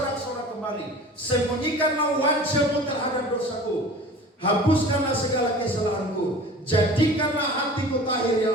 kembali. Sembunyikanlah wajahmu terhadap dosaku. Hapuskanlah segala kesalahanku. Jadikanlah hatiku tahir ya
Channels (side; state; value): both; normal; correlation 0.41